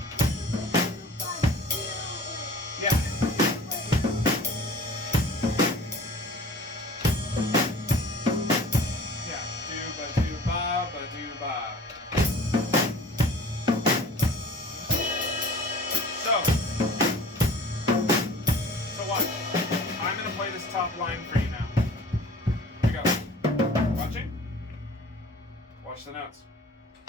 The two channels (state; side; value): normal; both; correlation 0.45